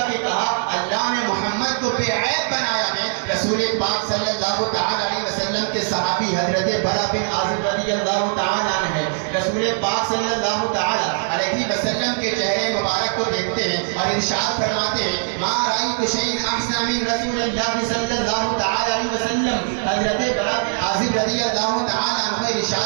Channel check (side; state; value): left; silent; 57 dB below the other